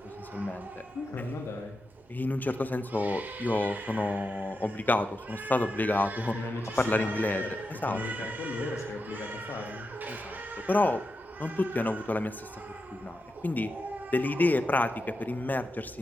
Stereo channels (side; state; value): both; normal; correlation 0.88